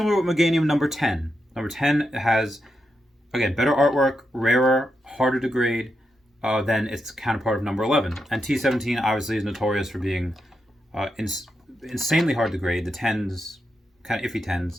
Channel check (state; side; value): normal; both; correlation 0.85